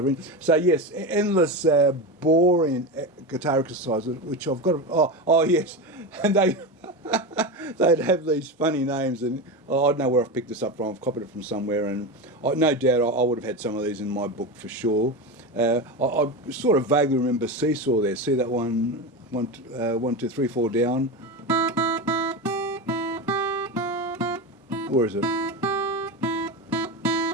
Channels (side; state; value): both; normal; correlation 0.20